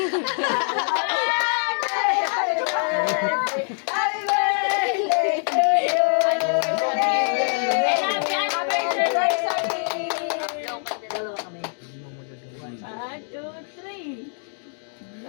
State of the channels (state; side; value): silent; right; 63 dB below the other